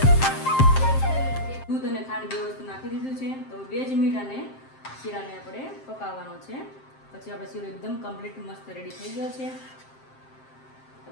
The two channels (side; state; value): right; late; 7.6 ms